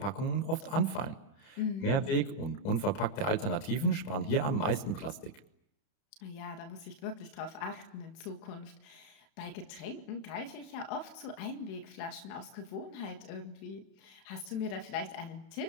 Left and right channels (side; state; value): right; late; 31 ms